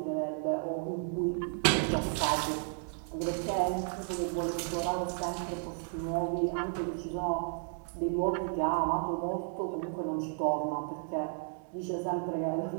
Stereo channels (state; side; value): silent; left; 56 dB below the other